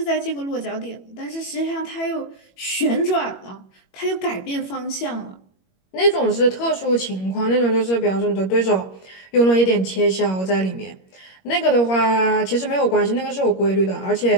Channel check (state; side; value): late; right; 21 ms